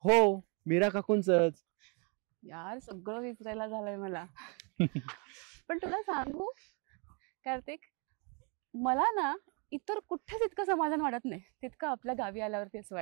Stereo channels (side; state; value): left; quieter; 34.9 dB